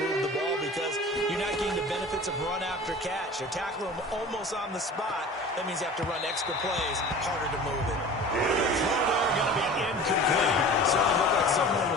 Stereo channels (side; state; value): both; normal; correlation 0.40